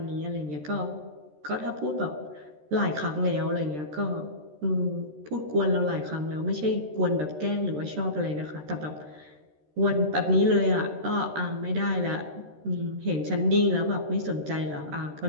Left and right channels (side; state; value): left; late; 13 ms